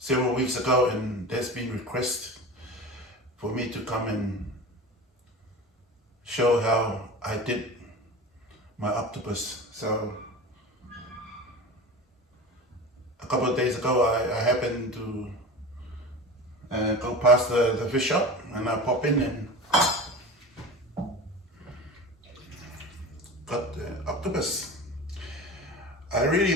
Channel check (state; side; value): normal; both; correlation 0.32